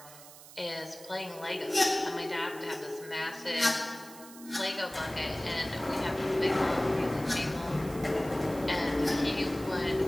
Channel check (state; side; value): noise; right; hiss, 18 dB below the sound